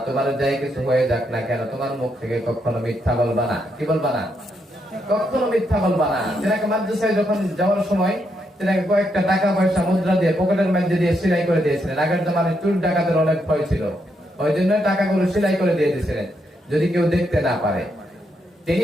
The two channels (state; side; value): normal; both; correlation 0.79